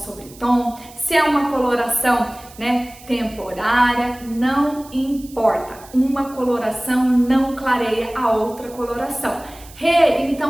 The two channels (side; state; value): right; noise; hiss, 21 dB below the sound